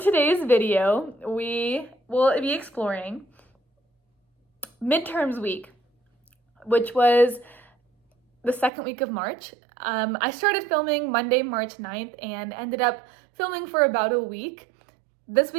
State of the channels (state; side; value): drops out; left; at 8.7 s